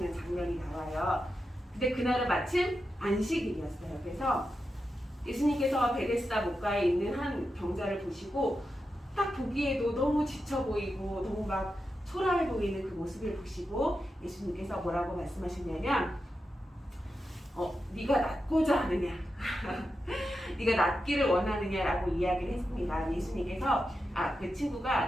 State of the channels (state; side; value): normal; both; correlation 0.89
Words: 장면이 나와요. 근데 그날은 마침 안식일이었어요. 그래서 예수님께서 베데스다 목가에 있는 한 병자를 보시고 딱 보기에도 너무 지쳐 보이고 너무 막 초라해 보이는 그 모습을 보시고 예수님께서 뭐라고 말씀하셨냐면 네가 낫고자 하느냐 네가 낫기를 원하느냐라고 이야기를 했습니다. 예수님께서